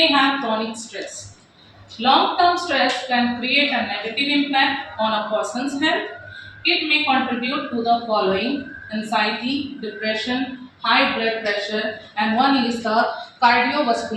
have chronic stress. Long-term stress can create a negative impact on a person's health. It may contribute to the following: anxiety, depression, high blood pressure, and one is the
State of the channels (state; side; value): identical; both; correlation 1.00